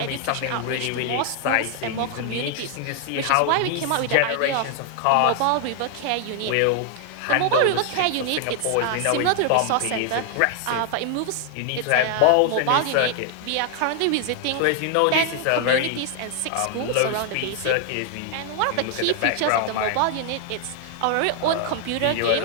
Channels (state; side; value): different; both; correlation 0.00